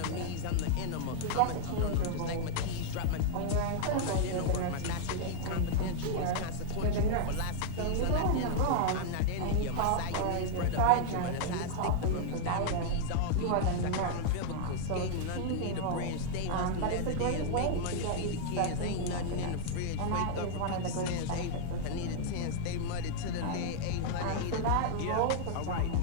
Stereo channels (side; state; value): both; different; correlation -0.01